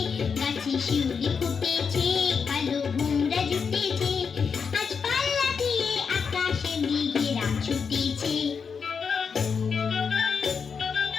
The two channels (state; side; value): quieter; right; 6.0 dB